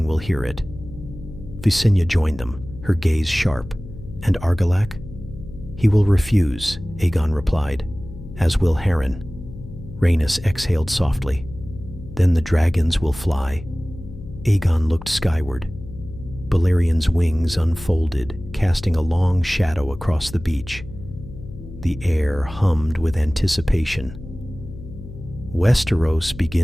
will hear it." Visenya joined them, her gaze sharp. "And Argilac?" "He will refuse," Aegon replied, "as will Harren." Rhaenys exhaled softly. "Then the dragons will fly." Aegon looked skyward. Balerion's wings unfolded, casting a long shadow across the beach. The air hummed with anticipation. "Westeros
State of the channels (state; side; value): noise; left; hum, 14 dB below the sound